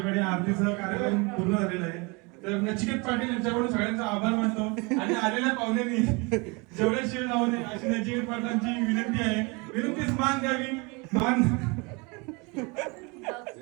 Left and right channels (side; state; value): left; quieter; 28.8 dB